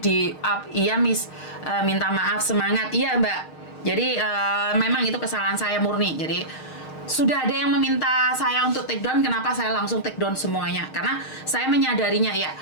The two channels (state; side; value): late; right; 6.5 ms